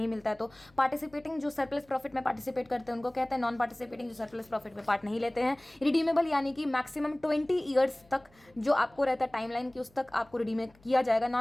मिलता है तो पार्टिसिपेटिंग जो सरप्लस प्रॉफिट में पार्टिसिपेट करते हैं उनको कहते हैं नॉन पार्टिसिपेटिंग जो सरप्लस प्रॉफिट में पार्ट नहीं लेते हैं. रिडीमेबल यानी कि मैक्सिमम 20 ईयर्स तक जो आपको रहता है टाइमलाइन की उस तक आपको रिडीम किया जाएगा.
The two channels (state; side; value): noise; left; hum, 30 dB below the sound